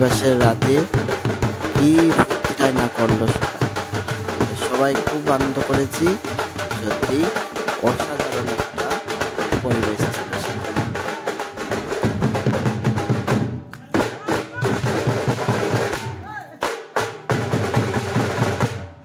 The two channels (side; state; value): both; identical; correlation 1.00